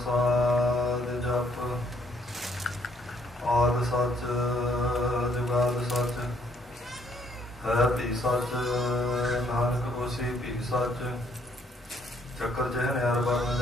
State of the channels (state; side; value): normal; both; correlation 0.67